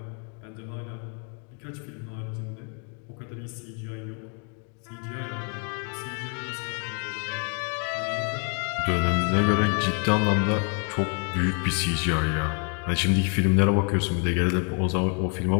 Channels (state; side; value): quieter; right; 39.1 dB